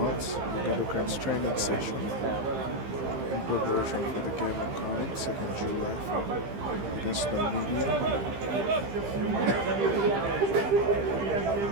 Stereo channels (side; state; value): left; late; 15 ms